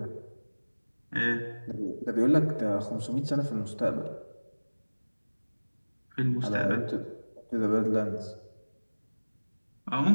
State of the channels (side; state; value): both; inverted; correlation -1.00